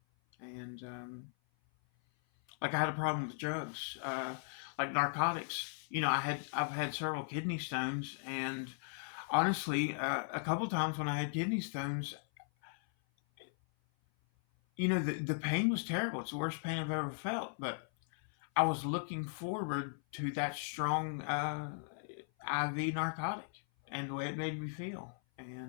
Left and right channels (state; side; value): silent; right; 53 dB below the other